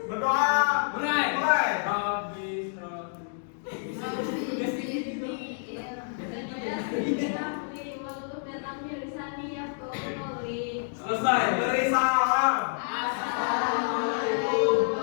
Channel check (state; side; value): silent; right; digital silence